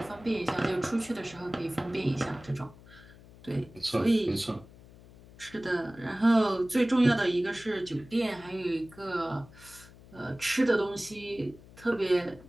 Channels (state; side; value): noise; left; hum, 21 dB below the sound